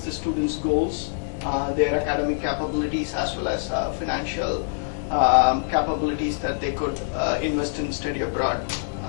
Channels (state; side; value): silent; right; digital silence